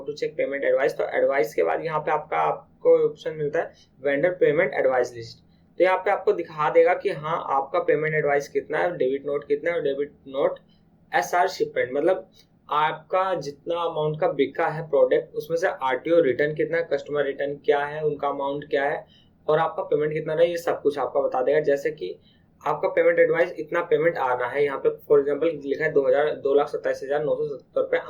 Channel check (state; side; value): identical; both; correlation 1.00